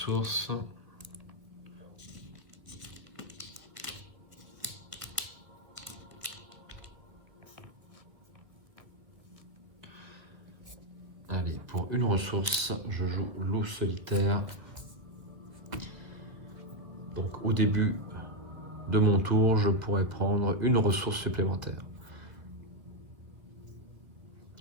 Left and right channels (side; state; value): left; late; 1.6 ms